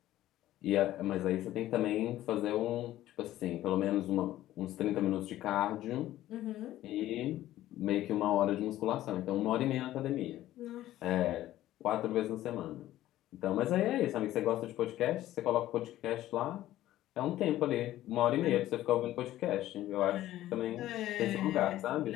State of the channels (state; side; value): quieter; right; 14.2 dB